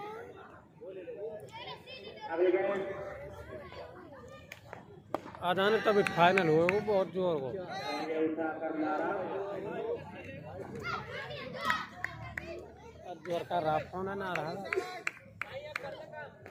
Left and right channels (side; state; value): both; identical; correlation 1.00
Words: अगली गेंद आधान तभी फाइनल हुए वो बहुत जोर को जोर का रात होना ना रहा